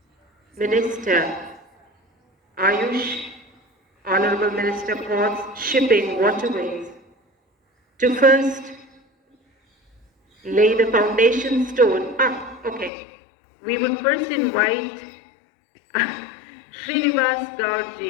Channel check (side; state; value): right; drops out; at 12.9 s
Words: Minister Ayush, Honorable Minister Ports, Shipping, Waterways, to first lay the foundation stone. Okay. We would first invite Srinivas